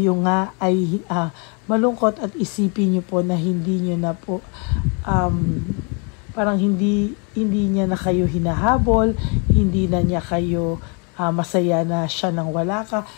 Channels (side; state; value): right; quieter; 34.3 dB